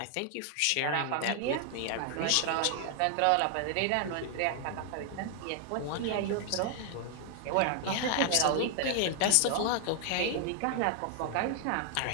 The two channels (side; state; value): both; different; correlation 0.00